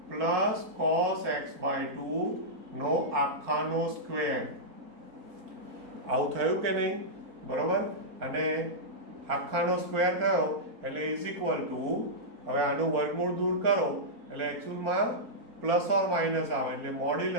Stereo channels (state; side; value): late; left; 4.4 ms